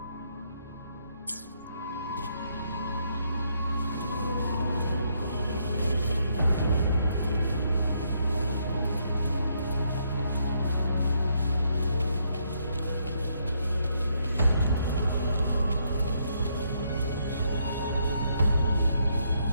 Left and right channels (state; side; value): inverted; both; correlation -0.74